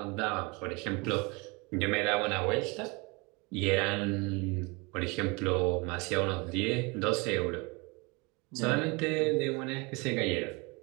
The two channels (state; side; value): quieter; left; 27.8 dB